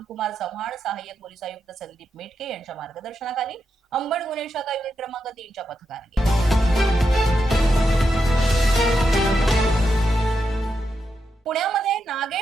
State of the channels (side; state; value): both; normal; correlation 0.85